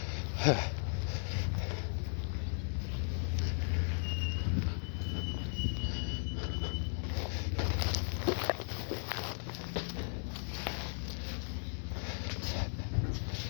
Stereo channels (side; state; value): right; silent; digital silence